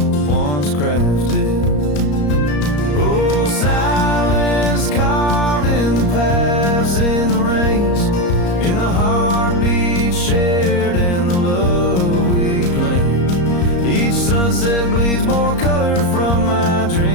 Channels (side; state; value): right; late; 34 ms